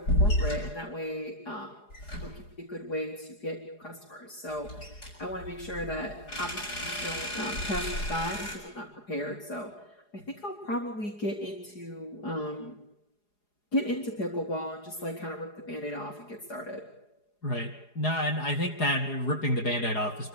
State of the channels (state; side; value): late; right; 4.8 ms